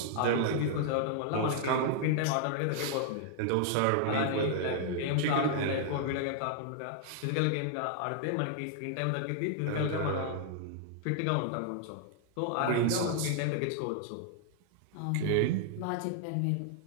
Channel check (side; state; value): both; different; correlation -0.01